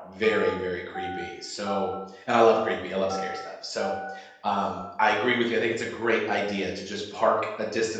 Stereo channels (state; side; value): identical; both; correlation 1.00